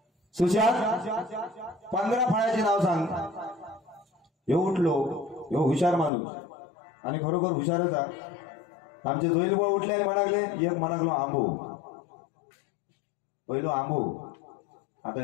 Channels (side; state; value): right; drops out; at 6.1 s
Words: सुशांत 15 फळांची नाव सांग. हे उठलो, हे हुशार माणूस आणि खरोखर हुशारच आहे. आमचे जोईल बुवा उठले आणि म्हणाले, एक म्हणागलो आंबो. पहिलो आंबो, आता